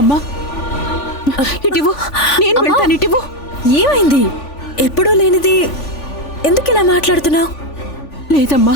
ఇటివు, నేను వెళ్తాను. ఇటివు. ఏమైంది? ఎప్పుడూ లేనిది ఎందుకు ఇలా మాట్లాడుతున్నావు? లేదమ్మా,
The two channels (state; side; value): late; right; 3.5 ms